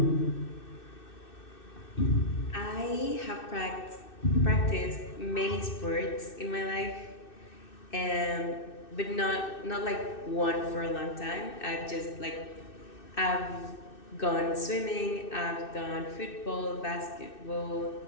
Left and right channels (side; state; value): right; late; 2.6 ms